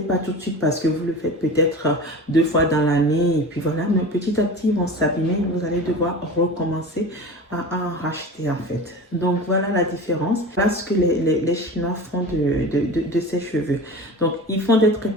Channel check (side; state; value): both; normal; correlation 0.33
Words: pas tout de suite parce que vous le faites peut-être 2 fois dans l'année. Et puis voilà, mais petit à petit, ils vont s'abîmer. Vous allez devoir recommencer à en racheter en fait. Donc voilà la différence. Voilà ce que les Chinois font de ces cheveux. Donc ils font des